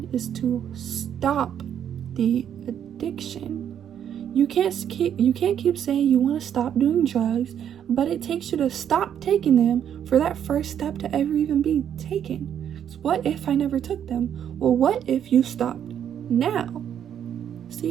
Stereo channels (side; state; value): left; quieter; 9.3 dB